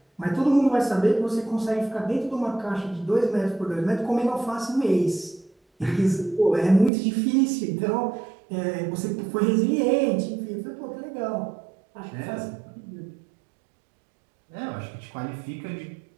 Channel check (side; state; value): left; drops out; at 6.9 s